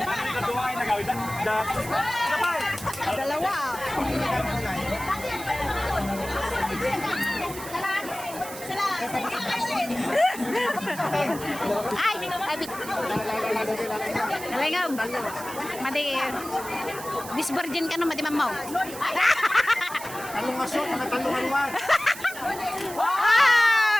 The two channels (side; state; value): right; noise; hiss, 12 dB below the sound